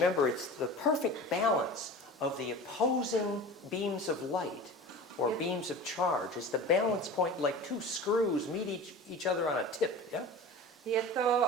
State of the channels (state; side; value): normal; both; correlation 0.35